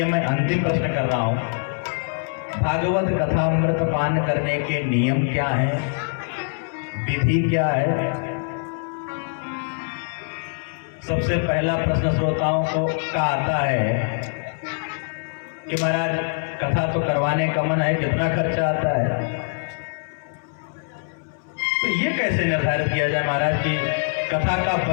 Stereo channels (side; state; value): right; silent; 62 dB below the other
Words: मैं अंतिम प्रश्न कर रहा हूं। भागवत कथा अमृत पान करने के नियम क्या है, विधि क्या है? सबसे पहला प्रश्न श्रोताओं को का आता है कि महाराज कथा तो करवाने का मन है, कितना खर्चा आता है? तो ये कैसे निर्धारित किया जाए महाराज कि कथा का